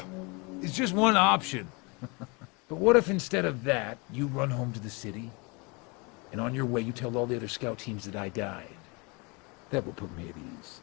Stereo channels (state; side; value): quieter; right; 29.3 dB